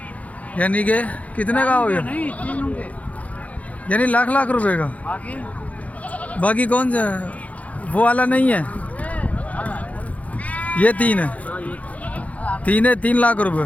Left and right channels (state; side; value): late; right; 0.069 ms